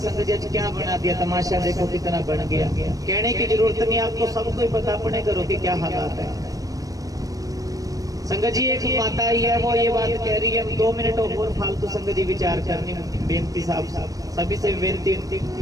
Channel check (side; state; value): left; late; 0.17 ms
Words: जी आज क्या बना दिया, तमाशा देखो कितना बन गया। कहने की जरूरत नहीं, आपको सबको पता अपने घरों के क्या हालात है संगत जी। एक माता ही है वो ये बात कह रही है, 2 मिनट और फालतू संगत जी विचार करनी बेनती साहब सभी से बेनती